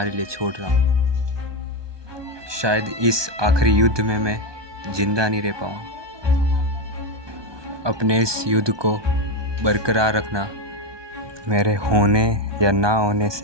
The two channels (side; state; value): left; late; 1.2 ms